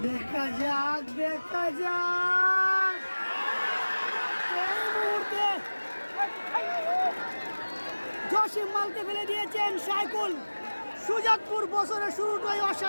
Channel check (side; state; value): both; inverted; correlation -1.00